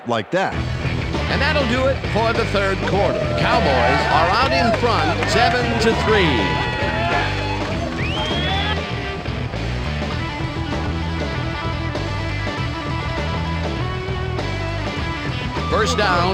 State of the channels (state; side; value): identical; both; correlation 1.00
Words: like that. And that'll do it for the third quarter. Cowboys are out in front, 7-3. First